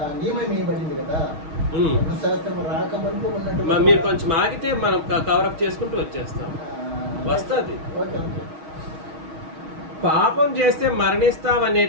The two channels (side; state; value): left; late; 6.4 ms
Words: నియమం ఇవ్వబడింది కదా. ధర్మశాస్త్రం రాకముందు ఉన్నట్టు మీరు కొంచెం ఆగితే మనం కవరప్ చేసుకుంటూ వచ్చేస్తాం, వస్తుంది. పాపం చేస్తే